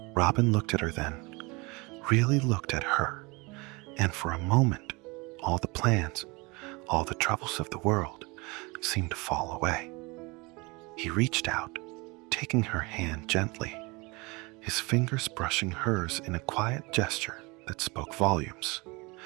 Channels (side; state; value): left; quieter; 26.1 dB